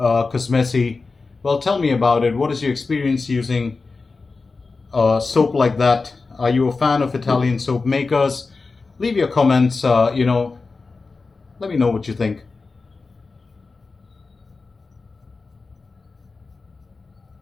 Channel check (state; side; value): quieter; right; 4.1 dB